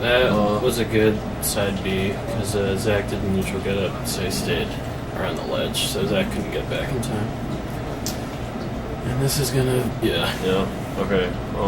That was a good side B because Zach did the neutral get up, so he stayed around the ledge, so Zach couldn't get back in time. And this is gonna, Yeah. Okay.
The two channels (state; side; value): identical; both; correlation 1.00